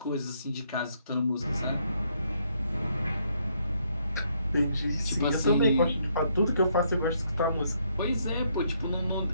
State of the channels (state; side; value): inverted; both; correlation -0.72